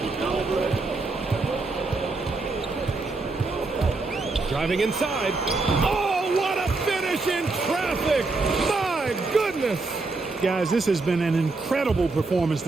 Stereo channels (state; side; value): quieter; left; 3.6 dB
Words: Driving inside. Oh, what a finish in traffic! My goodness! Guys, this has been an incredible performance